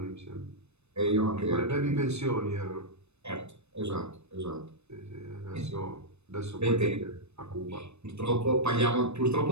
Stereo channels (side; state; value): left; late; 0.81 ms